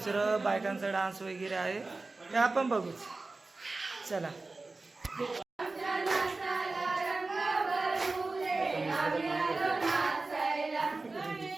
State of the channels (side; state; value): left; quieter; 3.5 dB